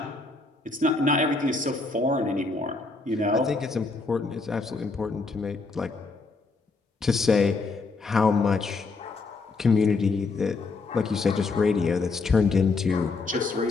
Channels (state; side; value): quieter; right; 3.9 dB